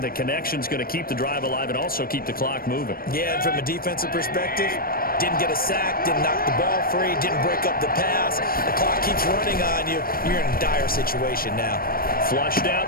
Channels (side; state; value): right; late; 0.43 ms